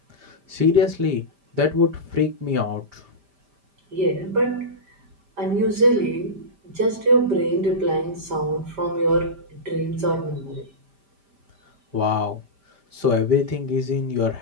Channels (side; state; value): left; late; 5.1 ms